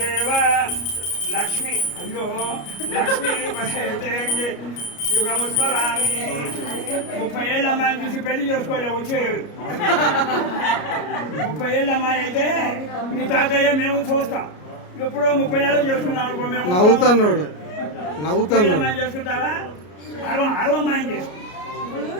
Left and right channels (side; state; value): right; late; 33 ms